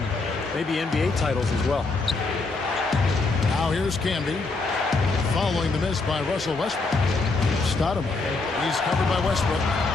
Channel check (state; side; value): quieter; right; 3.7 dB